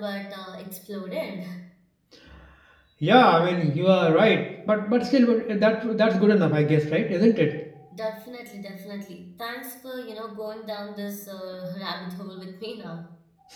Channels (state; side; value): identical; both; correlation 1.00